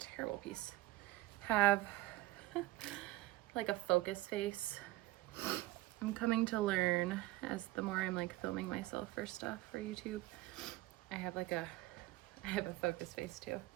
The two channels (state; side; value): quieter; left; 18.0 dB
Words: piece, have like a focus face? I'm coming to learn as the more I'm like filming myself for stuff for YouTube. I have a focus face too.